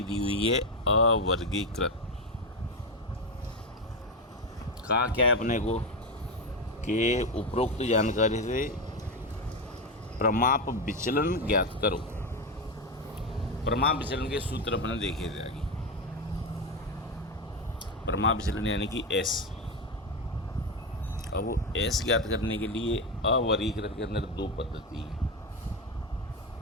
दी हुई है अवर्गीकृत। कहा क्या है अपने को कि उपरोक्त जानकारी से प्रमाप विचलन ज्ञात करो। प्रमाप विचलन के सूत्र अपने देखे थे आगे। प्रमाप विचलन यानी कि एस। अब वो एस ज्ञात करने के लिए अवर्गीकृत के अंदर दो पद्धति है।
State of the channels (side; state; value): both; normal; correlation 0.13